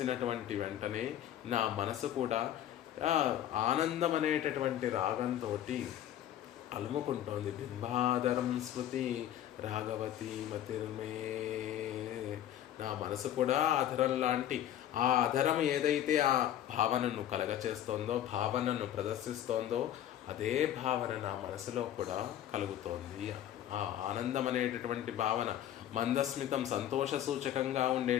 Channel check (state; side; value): quieter; right; 11.6 dB